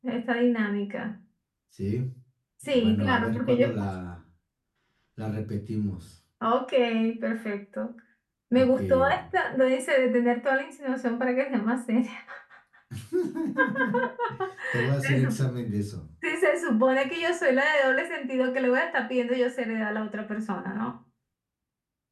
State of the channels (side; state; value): both; identical; correlation 1.00